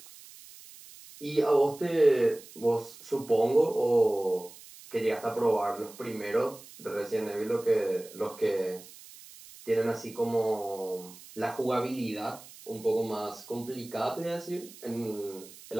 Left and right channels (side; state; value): right; noise; hiss, 19 dB below the sound